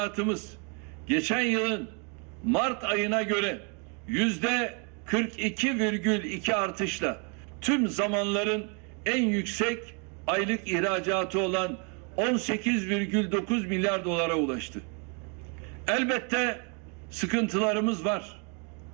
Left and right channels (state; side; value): quieter; left; 36.4 dB